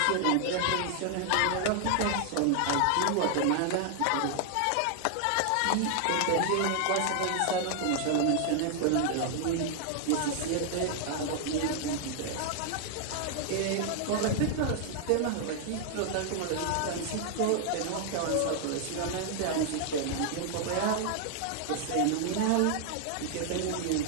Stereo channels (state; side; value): different; both; correlation 0.00